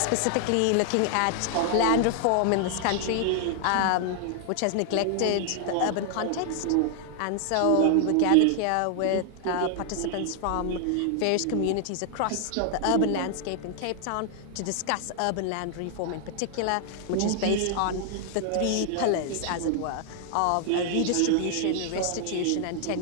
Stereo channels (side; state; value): both; different; correlation 0.00